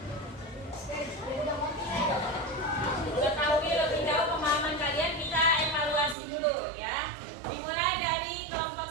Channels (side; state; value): left; drops out; at 6.2 s